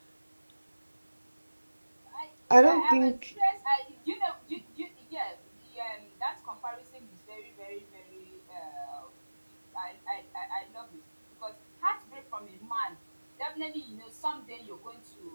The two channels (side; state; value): both; inverted; correlation -1.00